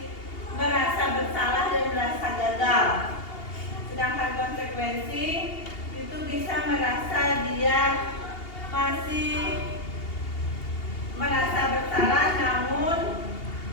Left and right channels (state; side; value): late; right; 2.8 ms